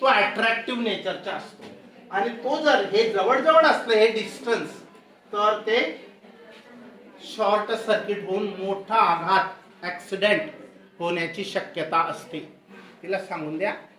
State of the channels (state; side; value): identical; both; correlation 1.00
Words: अट्रॅक्टिव्ह नेचरचा असतो. आणि तो जर हे जवळ असलं हे डिस्टन्स, तर ते शॉर्ट सर्किट होऊन मोठा आघात, ऍक्सिडेंट होण्याची शक्यता असते. तिला सांगून द्या,